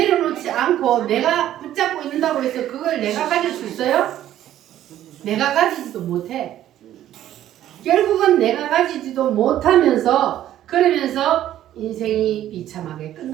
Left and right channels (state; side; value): quieter; left; 12.3 dB